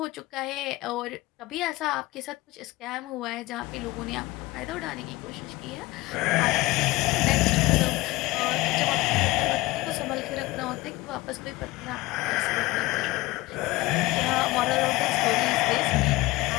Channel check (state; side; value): quieter; right; 20.3 dB